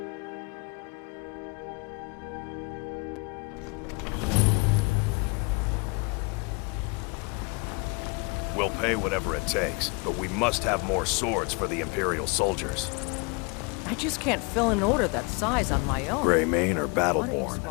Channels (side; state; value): right; quieter; 31.0 dB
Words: We'll pay whatever it takes, but we must have more swords for the Imperial soldiers. I just can't fill an order that size on my own. Greymane or Why don't you Battleborn?